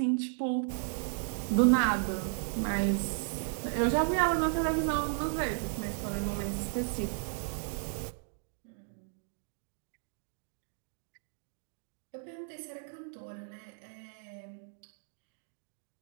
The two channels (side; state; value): left; silent; 55 dB below the other